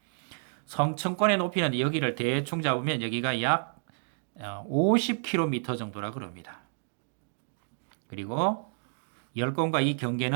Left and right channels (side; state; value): left; silent; digital silence